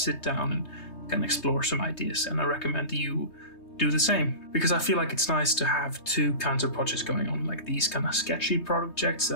down and kind of explore some ideas, and I recommend you do the same, because I feel like it's nice to have two kinds of projects going on, like these kind of sketchy projects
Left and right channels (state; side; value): late; right; 3.2 ms